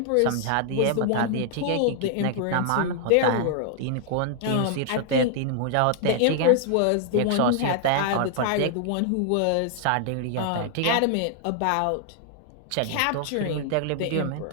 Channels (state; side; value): different; both; correlation 0.00